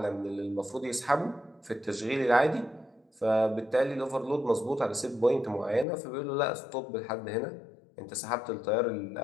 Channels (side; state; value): right; drops out; at 5.9 s